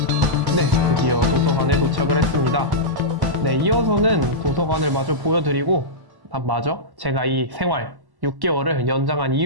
네, 드디어 도서관에 도착을 했습니다. 네, 이어서는 도서관을 마저 보여드리고 마저 제가 이 생활 6개월을 연장한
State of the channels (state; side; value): late; left; 1.1 ms